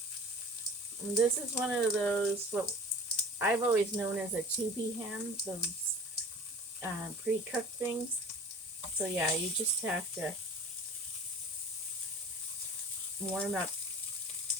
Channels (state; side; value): normal; both; correlation 0.42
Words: And this is one of those, what I've always known as a tubby ham, those pre-cooked things. So yeah, you just have to warm up